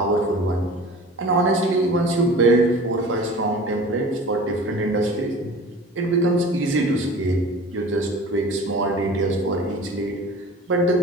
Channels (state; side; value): normal; both; correlation 0.41